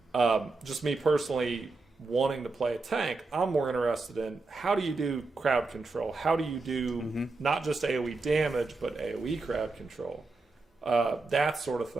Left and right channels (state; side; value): quieter; left; 3.6 dB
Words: just me personally wanting to play a tank. I'm more interested in how do you do crowd control? How do you do not just AoE damage, but AoE crowd control? That sort of